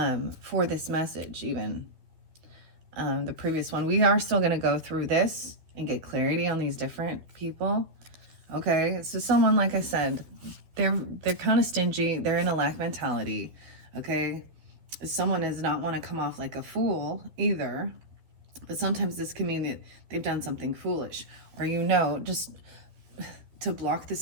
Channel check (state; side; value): late; left; 12 ms